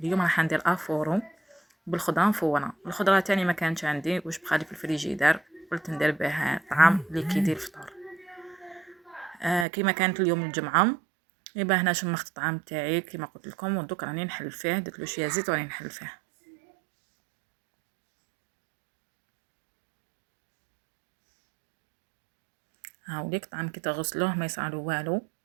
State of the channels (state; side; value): drops out; left; at 9.7 s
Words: راح ندير افورو بالخضره مفوره. الخضره تاني ما كانتش عندي واش بقالي في الفريجيدار، قلت ندير بها طعام اللي كيدير الفطور. كيما كانت اليوم الجمعه، يبقى هنا شمخت الطعام تاعي كيما قلت لكم، ودوك راني نحل فيه. درت له شويه زيت وراني نحل فيه. هاوليك الطعام كي تغسلوه ما يصعلو والو،